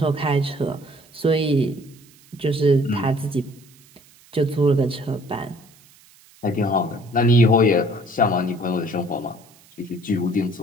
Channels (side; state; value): right; noise; hiss, 27 dB below the sound